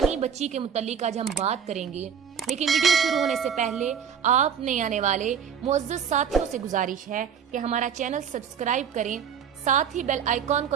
بچی کے متعلق آج ہم بات کریں گے، لیکن ویڈیو شروع ہونے سے پہلے آپ نئے آنے والے معزز ساتھیوں سے گزارش ہے کہ ہمارا چینل سبسکرائب کریں، ساتھ ہی بیل آئیکن کو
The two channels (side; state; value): left; quieter; 7.7 dB